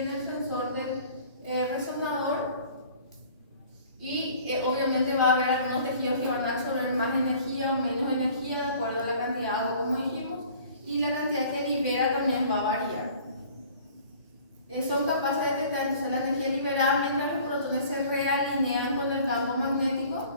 en el sensor del resonador. Y obviamente va a haber algunos tejidos que van a absorber más energía o menos energía de acuerdo a la cantidad de agua, como dijimos. Y la cantidad que libera también va a variar. Son capaces de detectar entonces la energía liberada mientras los protones se realinean con el campo magnético.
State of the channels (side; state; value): both; inverted; correlation -0.50